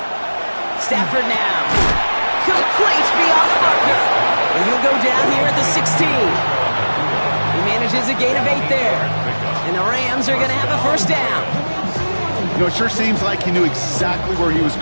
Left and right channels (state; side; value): inverted; both; correlation -1.00